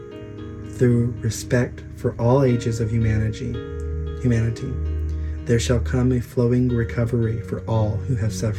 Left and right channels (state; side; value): identical; both; correlation 1.00